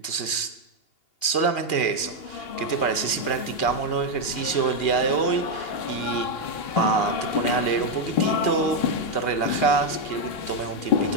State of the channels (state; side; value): late; right; 2.8 ms